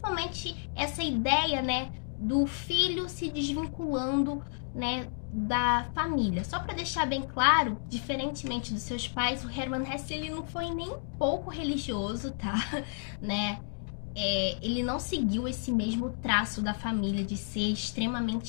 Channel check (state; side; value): silent; right; digital silence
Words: essa ideia, né, do filho se desvinculando, né, da família. Só para deixar bem claro, diferentemente dos seus pais, o Hermann Hesse ele não foi nem um pouco religioso, tá? Né? Ele não seguiu esse mesmo traço da família de ser